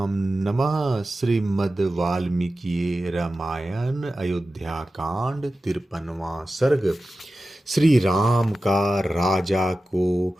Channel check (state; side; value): normal; both; correlation 0.94